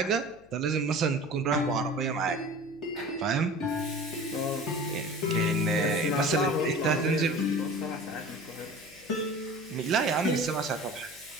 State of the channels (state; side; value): noise; left; hum, 26 dB below the sound